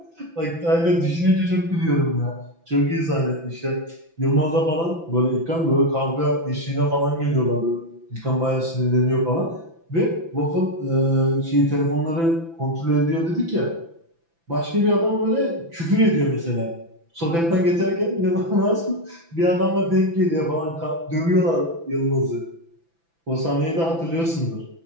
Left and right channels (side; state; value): left; late; 6.0 ms